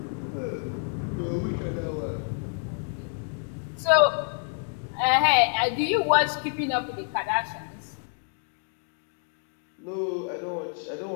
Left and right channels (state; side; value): silent; right; 59 dB below the other